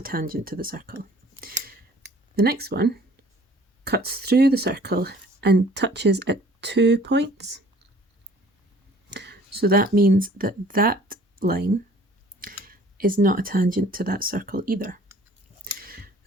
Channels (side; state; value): both; normal; correlation 0.53